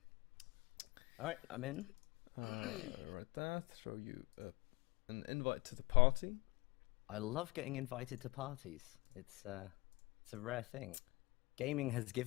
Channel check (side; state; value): right; quieter; 24.1 dB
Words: All right, I'm in. Right there, throw you an invite to the party. I love getting invited to parties. It's a rare thing. Gaming has